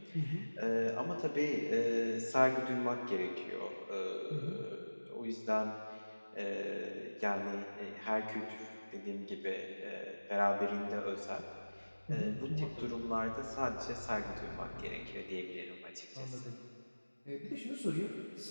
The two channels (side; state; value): both; inverted; correlation -1.00